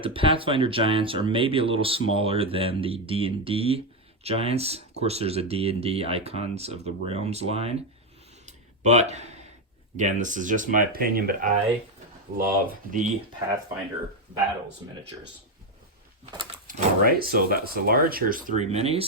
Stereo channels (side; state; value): both; normal; correlation 0.06